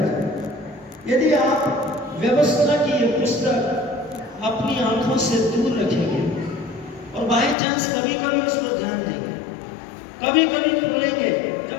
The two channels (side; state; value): right; drops out; at 7.6 s